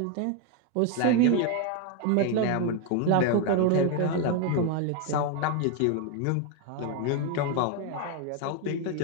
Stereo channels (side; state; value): both; different; correlation 0.01